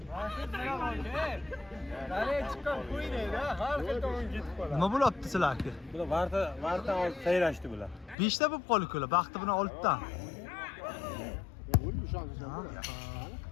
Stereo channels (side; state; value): right; drops out; at 8.2 s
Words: Nima bo'lyapti sizlarga? Bular varta olib sayrashdi bular. 5 ta bo'lib qoldi ular. Baxti bilan 6 ta.